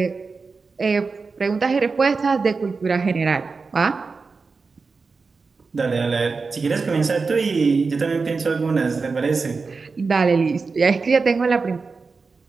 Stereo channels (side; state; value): left; quieter; 4.5 dB